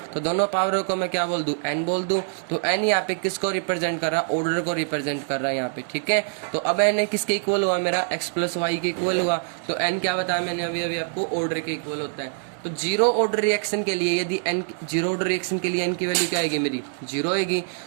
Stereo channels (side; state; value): left; silent; digital silence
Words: तो दोनों पावरों को मैं क्या बोल दूं, n बोल दूं। तो n यहाँ पे किसको रिप्रेजेंट कर रहा है, ऑर्डर को रिप्रेजेंट कर रहा है यहाँ पे। ठीक है, तो अब n किसके इक्वल हुआ मेरा, x + y के इक्वल हुआ। तो n क्या बताया मैंने अभी आपको, ऑर्डर के इक्वल होता है। तो 0 ऑर्डर रिएक्शन के लिए यदि n 0 ऑर्डर रिएक्शन के लिए n की वैल्यू क्या आएगी मेरी, 0 आएगी।